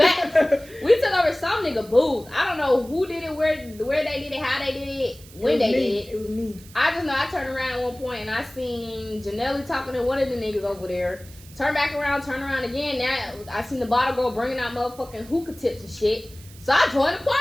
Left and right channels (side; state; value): right; noise; hiss, 21 dB below the sound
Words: We took over some nigga booth. I don't know who did it, where they did it, how they did it, when they did it. It was me. I just know I turned around at one point and I seen Janelle talking to one of the niggas over there. Turn back around, turn around again. Now I seen the bottle girl bringing out motherfucking hookah tips and shit. So I joined the